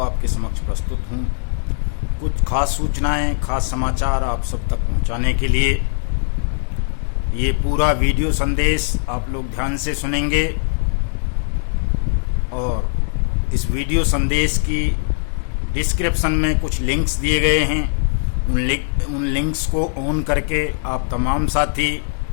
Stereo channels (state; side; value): silent; right; digital silence